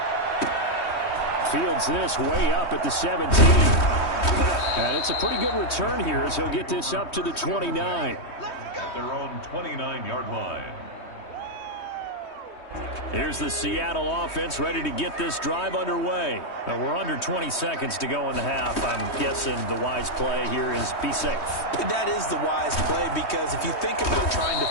Fields this way up at the 17. And it's a pretty good return here as he'll get this up to the 29. At their own 29-yard line. Here's the Seattle offense ready to get this drive underway. Now we're under 20 seconds to go in the half. I'm guessing the wise play here is be safe. That is the wise play because if you think about trying to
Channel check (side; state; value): right; late; 3.2 ms